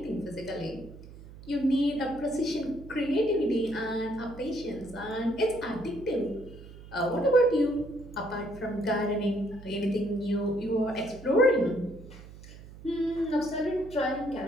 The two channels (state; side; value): noise; right; hum, 17 dB below the sound